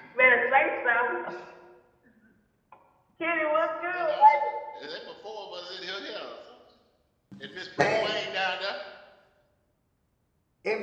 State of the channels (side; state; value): both; identical; correlation 1.00